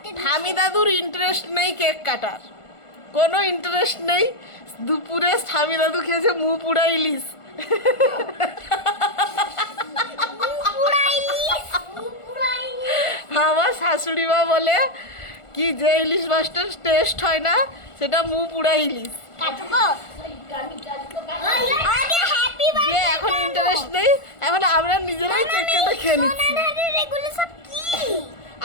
ঠামি দাদুর ইন্টারেস্ট নেই কেক কাটার, কোনো ইন্টারেস্ট নেই। দুপুরে ঠামি দাদু খেয়েছে মুখ পুরা ইলিশ। আমার শাশুড়ি মা বলে কি যে ইলিশ মাছটার টেস্ট হয় না সেটা মুখ পুরা ইলিশ। এখন ইন্টারেস্ট নেই, এখন আমরা নিজেরাই কেক কেটে খেয়ে নিচ্ছি।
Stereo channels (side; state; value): right; late; 1.4 ms